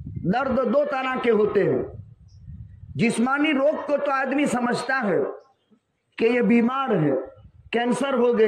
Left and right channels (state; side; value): identical; both; correlation 1.00